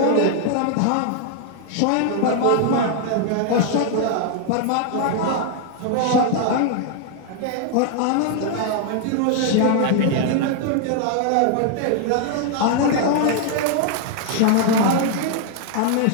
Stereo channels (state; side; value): different; both; correlation 0.00